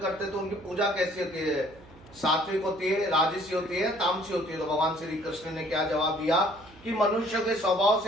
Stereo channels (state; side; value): noise; right; hum, 23 dB below the sound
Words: तो उनकी पूजा कैसी होती है? सात्विक होती है, राजसी होती है, तामसी होती है। तो भगवान श्री कृष्ण ने क्या जवाब दिया कि मनुष्य के स्वभाव